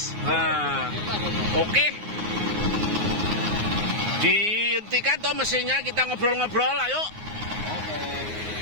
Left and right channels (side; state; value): left; late; 9.5 ms